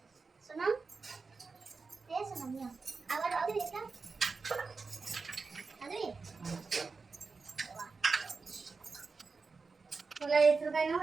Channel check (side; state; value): left; quieter; 4.4 dB